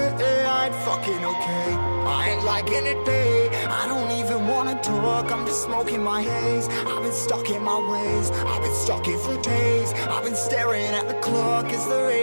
I ain't fucking okay, I ain't liking it, babe. I don't even wanna talk, I'm just smoking my haze. I've been stuck in my ways, I've been stuck here for days. I've been staring at the clock as the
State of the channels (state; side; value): inverted; both; correlation -1.00